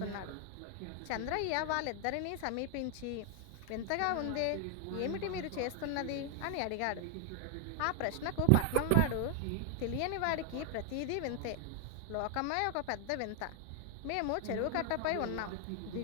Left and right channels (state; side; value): different; both; correlation 0.00